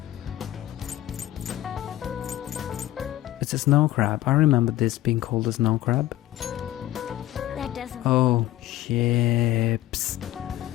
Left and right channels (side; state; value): right; quieter; 14.4 dB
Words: It's a snow crab. I remember this being called a snow crab. That doesn't. Oh, ships.